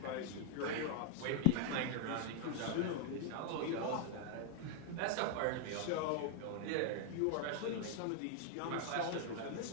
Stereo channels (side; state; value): both; different; correlation 0.00